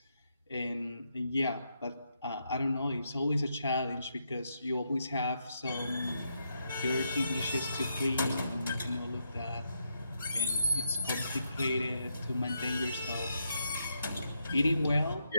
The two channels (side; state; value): both; inverted; correlation -0.80